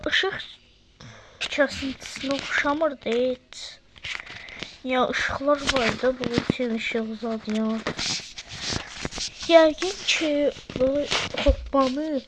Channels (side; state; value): both; identical; correlation 1.00